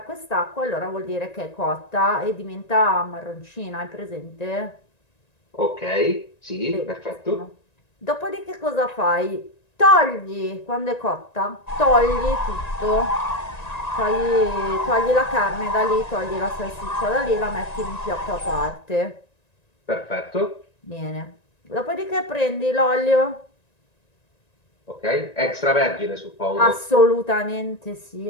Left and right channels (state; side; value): late; right; 1.9 ms